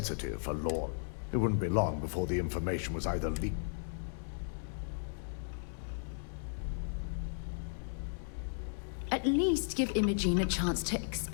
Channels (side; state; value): right; silent; digital silence